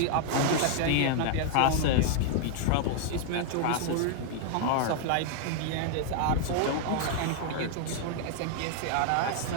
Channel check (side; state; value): both; different; correlation -0.01